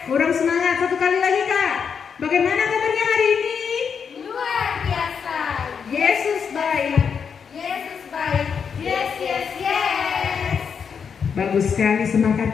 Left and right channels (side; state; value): right; quieter; 6.6 dB